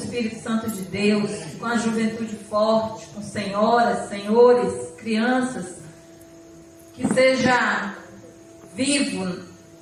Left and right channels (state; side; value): identical; both; correlation 1.00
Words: Santo de Deus, com a juventude forte, com senhoras, senhores, crianças. Que seja vivo,